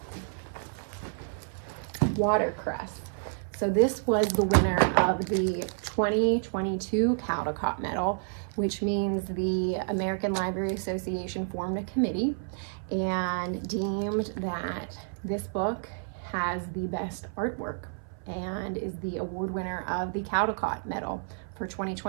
Watercress. So this was the winner of the 2022 Caldecott Medal, which means the American Library Association formed a committee and deemed that this book has the best artwork and is the award winner of the Caldecott Medal for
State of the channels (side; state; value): left; silent; 58 dB below the other